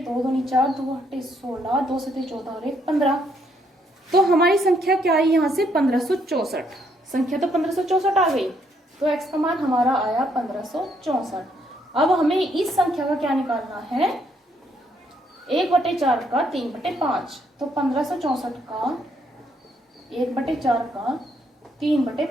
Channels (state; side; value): normal; both; correlation 0.71